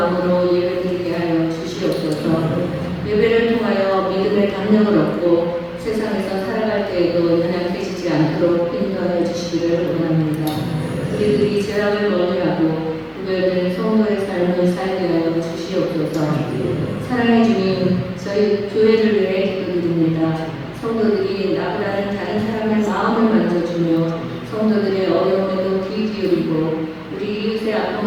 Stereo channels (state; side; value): identical; both; correlation 1.00